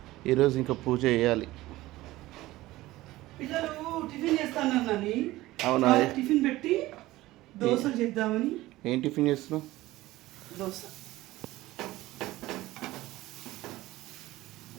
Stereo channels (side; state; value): left; quieter; 17.5 dB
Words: ఈరోజు ఇంకా పూజ చేయాలి. పిల్లలు టిఫిన్ చేస్తానని అవునా? టిఫిన్ పెట్టి దోశలు చేద్దామని. ఏం టిఫిన్ చేస్తున్నావు? దోశ